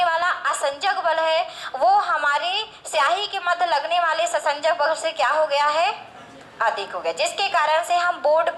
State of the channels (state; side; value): identical; both; correlation 1.00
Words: वाला असंजक बल है वो हमारे स्याही के मध्य लगने वाले ससंजक बल से क्या हो गया है? अधिक हो गया, जिसके कारण से हम बोर्ड